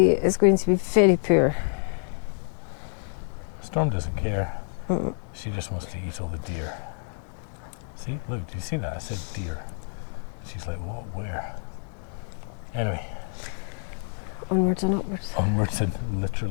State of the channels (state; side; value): silent; right; 60 dB below the other